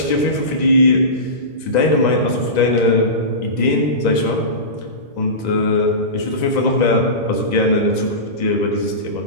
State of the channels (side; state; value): right; late; 1.9 ms